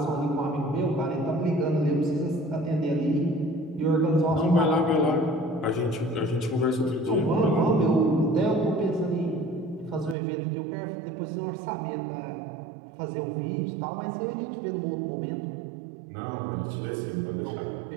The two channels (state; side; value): drops out; left; at 10.2 s